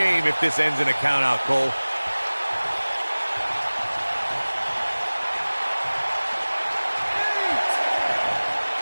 if this ends in a count out, Cole.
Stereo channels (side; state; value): both; inverted; correlation -1.00